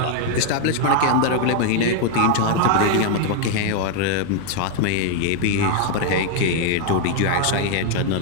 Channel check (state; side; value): different; both; correlation 0.00